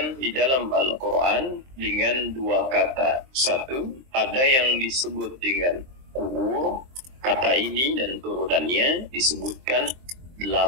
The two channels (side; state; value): left; late; 23 ms